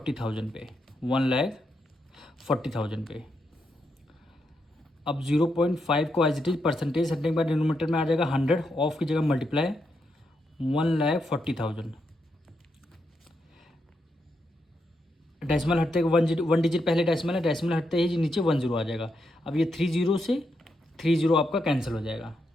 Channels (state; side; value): normal; both; correlation 0.82